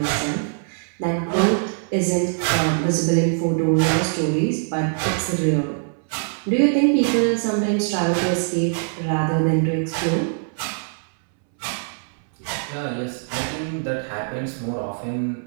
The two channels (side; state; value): left; silent; 64 dB below the other